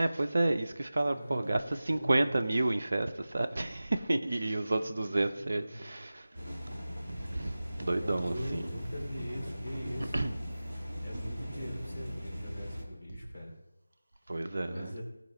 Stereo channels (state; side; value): inverted; both; correlation -0.97